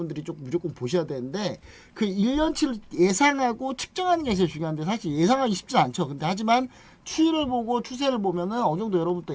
좀 무조건 보셔야 되는데, 그 1년치를 예상하고 측정하는 게 제일 중요한데, 사실 예상하기 쉽지 않죠. 근데 하지만 추이를 보고 추세를 보면은 어느 정도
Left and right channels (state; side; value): identical; both; correlation 1.00